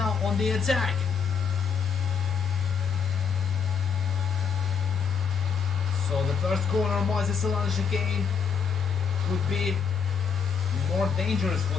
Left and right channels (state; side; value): quieter; right; 6.4 dB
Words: on the attack. So the first corner, Moises Salon chicane, could be more dangerous